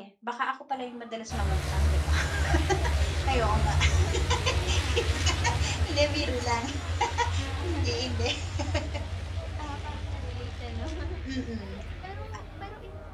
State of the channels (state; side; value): identical; both; correlation 1.00